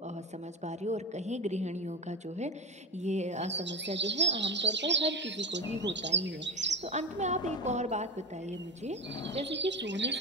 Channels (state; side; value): normal; both; correlation 0.21